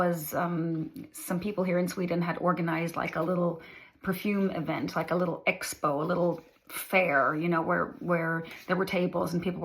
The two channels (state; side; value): identical; both; correlation 1.00